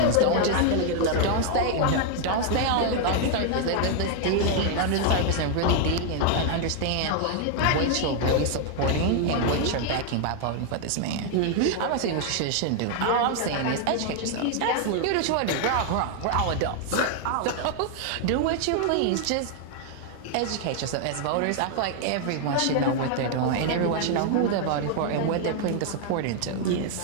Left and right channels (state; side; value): different; both; correlation 0.00